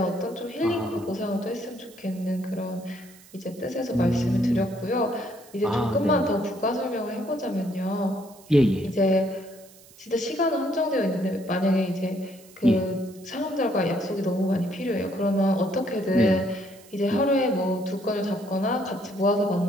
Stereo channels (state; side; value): noise; right; hiss, 24 dB below the sound